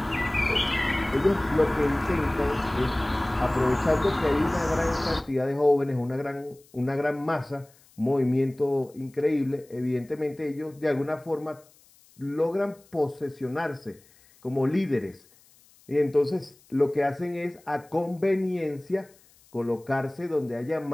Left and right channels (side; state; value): left; noise; hiss, 29 dB below the sound